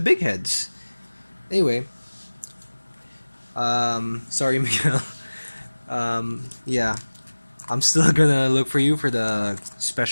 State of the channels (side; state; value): both; inverted; correlation -1.00